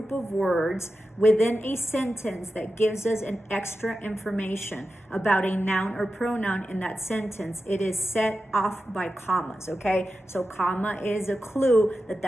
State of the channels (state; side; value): normal; both; correlation 0.91